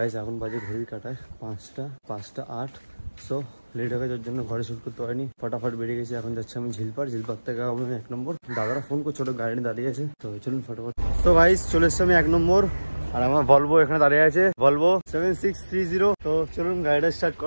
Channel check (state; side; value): inverted; both; correlation -1.00